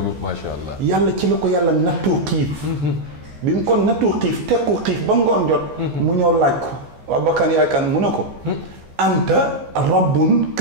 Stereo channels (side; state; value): left; late; 14 ms